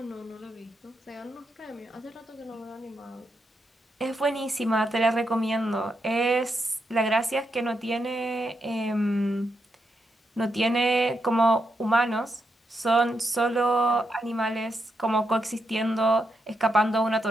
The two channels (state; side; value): normal; both; correlation 0.83